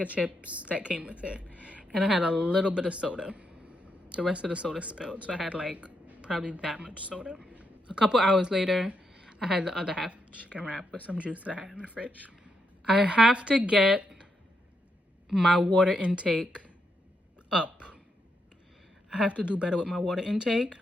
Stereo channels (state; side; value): normal; both; correlation 0.81